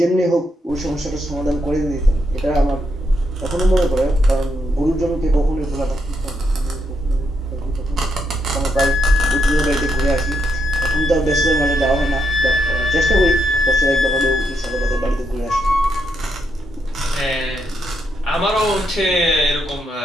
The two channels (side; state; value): both; normal; correlation 0.79